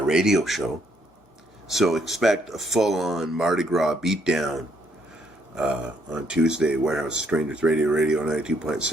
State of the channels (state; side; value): normal; both; correlation 0.70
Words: show. So expect a full-on Mardi Gras beatdown on Tuesday, Warehouse Strangers Radio